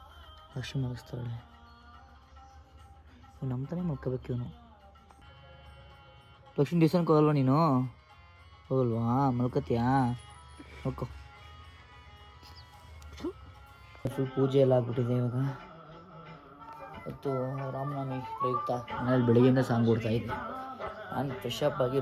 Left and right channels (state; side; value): identical; both; correlation 1.00